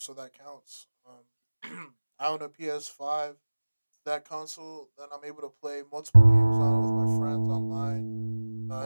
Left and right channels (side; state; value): both; inverted; correlation -1.00